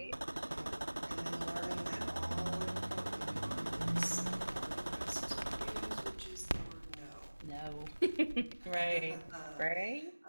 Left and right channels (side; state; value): both; inverted; correlation -1.00